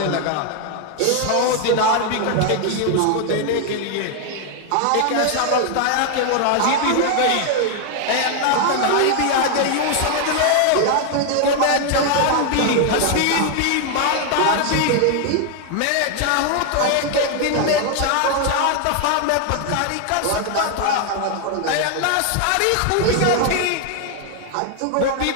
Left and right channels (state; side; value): different; both; correlation 0.00